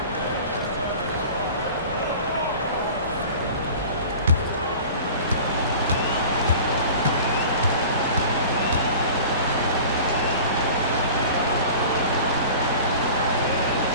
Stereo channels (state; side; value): inverted; both; correlation -0.40